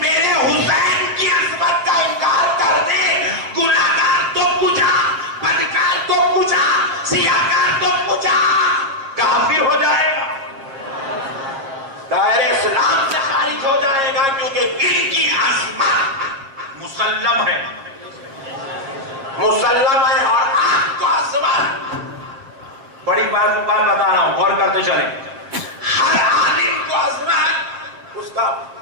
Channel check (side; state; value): left; late; 7.3 ms